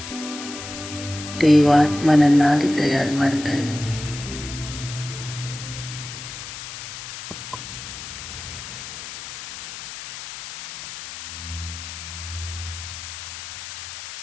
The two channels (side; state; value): left; noise; hiss, 10 dB below the sound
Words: ದೇವಾತ್ಮನನ್ನಾಗಿ ತಯಾರು ಮಾಡ್ತಾ ಇದೆ.